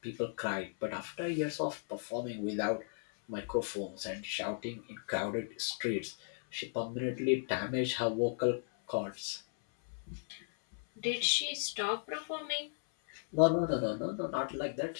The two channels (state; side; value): silent; right; 54 dB below the other